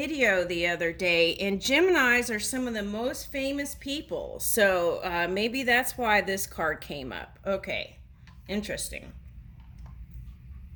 the other day, and Geminis are some of the most famous people. So maybe that's why this card came up. Okay, interesting.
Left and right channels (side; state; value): both; identical; correlation 1.00